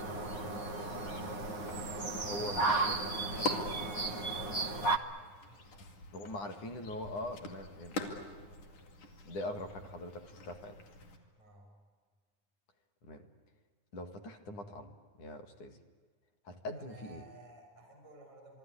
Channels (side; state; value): right; late; 9.7 ms